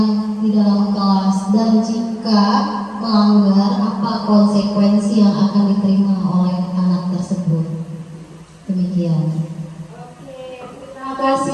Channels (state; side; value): identical; both; correlation 1.00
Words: di dalam kelas, dan jika melanggar apa konsekuensi yang akan diterima oleh anak tersebut. Demikian. Terima